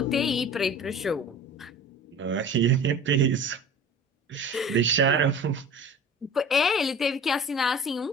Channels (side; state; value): both; normal; correlation 0.40